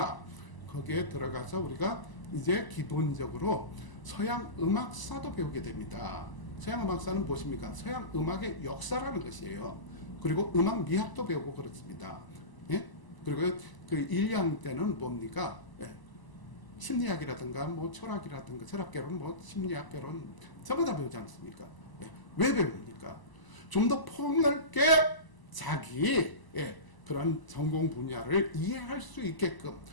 거기에 들어가서 우리가 이제 기본적으로 서양 음악사도 배우게 됩니다. 서양 음악사는 무엇입니까? 서양 음악의 역사라는 것이에요. 그리고 음악 미학도 배우고 그렇습니다. 예? 그리고 그 1년 때는 뭡니까? 예. 심리학이라든가 뭐 철학이라든가 철학개론 뭐 심리학개론 전부 다 배우지 않습니까? 예. 왜 배웁니까? 좀 더 폭넓게 자기 그런 전공 분야를 이해할 수 있게끔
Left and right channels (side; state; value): right; late; 1.0 ms